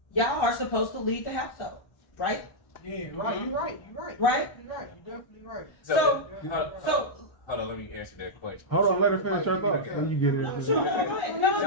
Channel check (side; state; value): right; late; 1.1 ms